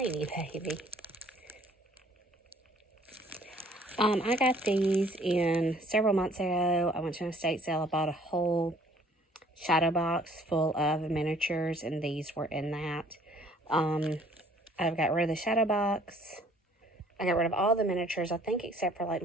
baby. I got these in several months ago. I went to an estate sale. I bought a whole shadow box full of miniatures, and these were in that. I've got rid of the shadow box. I got rid of all the miniatures, I think, except for like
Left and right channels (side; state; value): both; normal; correlation 0.58